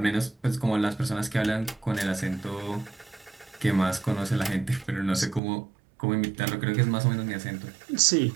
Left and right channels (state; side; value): drops out; left; at 5.4 s